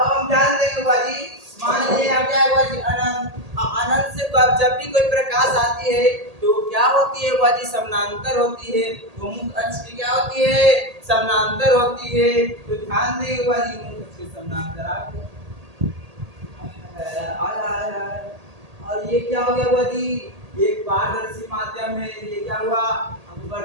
हम ध्यान देंगे बुआ जी, मान लीजिए यहाँ क्या है बुआ जी, अनंत। अनंत से जब भी कोई प्रकाश आती है तो क्या होती है बुआ जी, समानांतर होती है। तो मुख्य अक्ष की क्या होती है, समानांतर होती है। तो ध्यान देंगे बुआ जी, मुख्य अक्ष के समानांतर आया। और ये क्या हो गया बुआ जी, एक पारदर्शी माध्यम है, ये क्या हुआ,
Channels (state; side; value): late; left; 1.8 ms